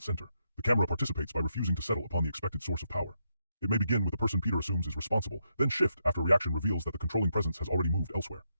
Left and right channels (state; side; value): inverted; both; correlation -0.81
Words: center. The camera participates by refusing to settle upon the expected source of power. It may begin with the person Peter assumes is responsible, then shift after reaction reveals that the controlling presence has already moved elsewhere.